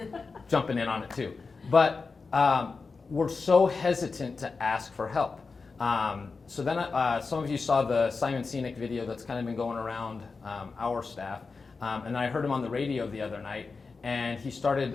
jumping in on it too. But we're so hesitant to ask for help. So then some of you saw the Simon Sinek video that's kind of been going around our staff. And I heard him on the radio the other night, and he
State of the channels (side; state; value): right; quieter; 4.4 dB